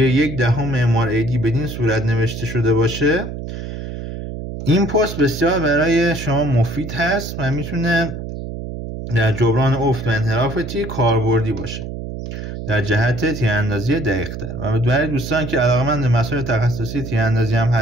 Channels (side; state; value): right; noise; hum, 8 dB below the sound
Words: 1/10 MRAD بدین صورت نوشته شده باشه، این پست بسیار برای شما مفید هست و میتونه در جبران افت و انحراف تیر کاربردی باشه در جهت تیراندازی دقیق‌تر. و برای دوستان که علاقه‌مند به مسائل تخصصی تیراندازی هم